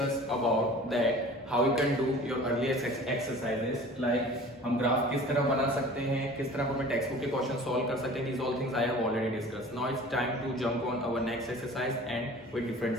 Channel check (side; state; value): both; normal; correlation 0.43